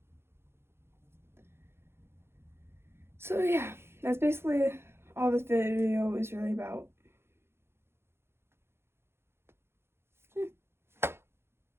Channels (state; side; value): late; left; 0.12 ms